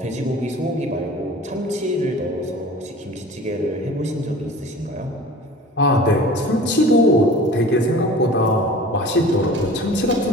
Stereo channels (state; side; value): normal; both; correlation 0.42